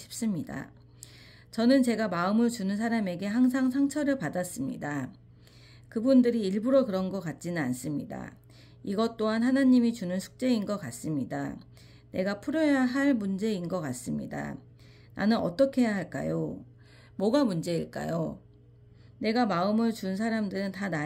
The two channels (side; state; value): both; identical; correlation 1.00